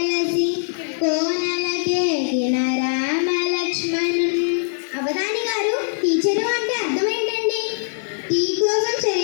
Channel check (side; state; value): right; silent; 65 dB below the other